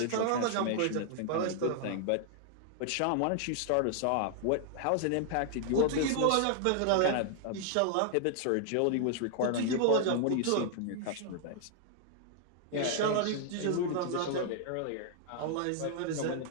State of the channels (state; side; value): different; both; correlation 0.00